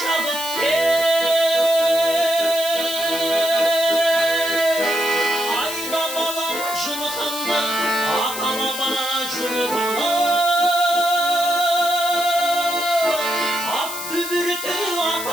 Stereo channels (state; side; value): noise; left; hiss, 7 dB below the sound